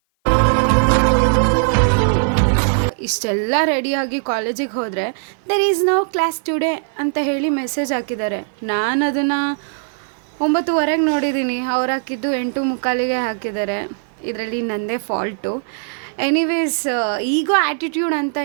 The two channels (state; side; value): silent; left; 56 dB below the other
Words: ಇಷ್ಟೆಲ್ಲ ರೆಡಿಯಾಗಿ ಕಾಲೇಜಿಗೆ ಹೋದರೆ there is no class today ಅಂತ ಹೇಳಿ ಮೆಸೇಜ್ ಹಾಕಿದ್ದಾರೆ. ನಾನು ಅದನ್ನು 9:15ಗೆ ನೋಡಿದ್ದೀನಿ, ಅವ್ರು ಹಾಕಿದ್ದು 8:45ಗೆ ಹಾಕಿದ್ದಾರೆ. ಇದರಲ್ಲಿ ನನ್ನದೇ ಫಾಲ್ಟು. ಎನಿವೇಸ್, ಈಗೋ ಆ್ಯಟಿಟ್ಯೂಡ್ ಅಂತ